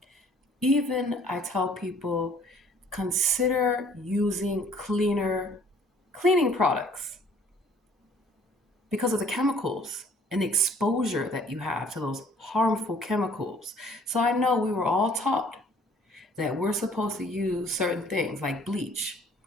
Even I tell people, consider using cleaning products because of the chemicals and the exposure that you have to those harmful chemicals. So I know we were all taught that we're supposed to use certain things like bleach.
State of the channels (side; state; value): both; normal; correlation 0.56